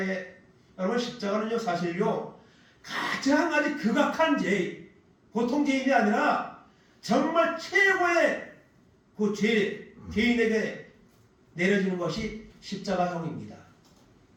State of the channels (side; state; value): both; identical; correlation 1.00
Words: 십자가는요 사실요 가장 아주 극악한 죄, 보통 죄인이 아니라 정말 최고의 그 죄인에게 내려지는 것이 십자가형입니다.